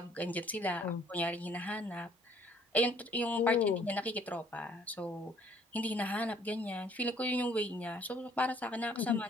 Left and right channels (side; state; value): both; normal; correlation 0.60